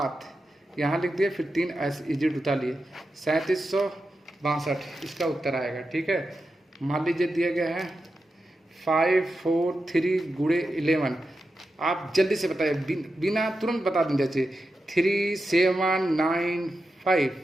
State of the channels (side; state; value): both; normal; correlation 0.90